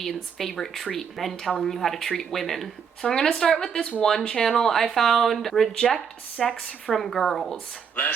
favorite treat. Men telling you how to treat women. So I'm gonna start with this one channel I found. Reject sex from girls.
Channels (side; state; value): left; quieter; 6.9 dB